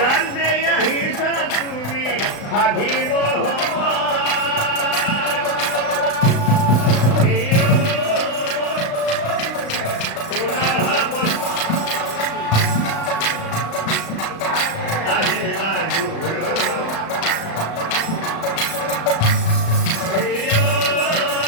দেয়া হিসা তুমি হাজিব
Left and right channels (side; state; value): right; late; 36 ms